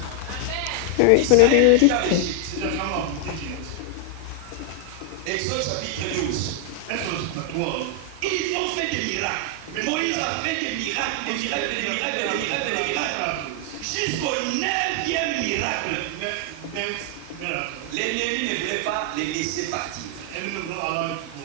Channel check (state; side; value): different; both; correlation 0.00